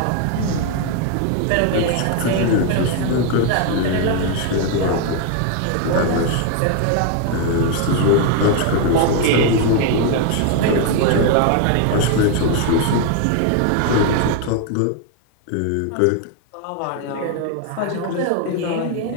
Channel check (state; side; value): different; both; correlation 0.01